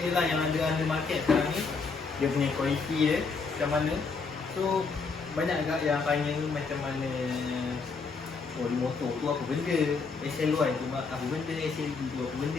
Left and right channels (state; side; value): quieter; right; 4.7 dB